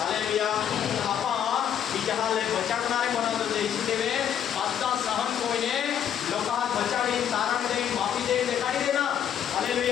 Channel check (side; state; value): right; quieter; 9.3 dB